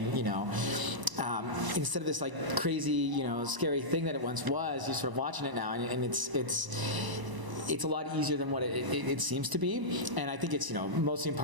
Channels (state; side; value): late; left; 1.0 ms